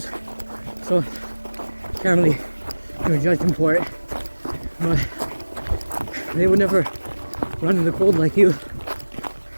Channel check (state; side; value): inverted; both; correlation -1.00